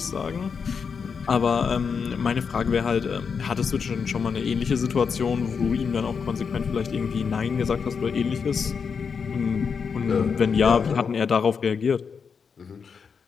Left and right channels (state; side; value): quieter; right; 6.0 dB